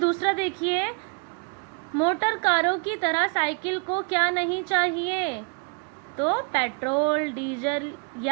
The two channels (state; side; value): quieter; left; 37.6 dB